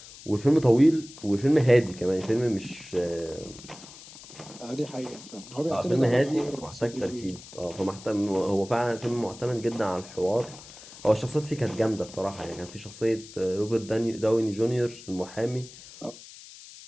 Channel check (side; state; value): left; noise; hiss, 17 dB below the sound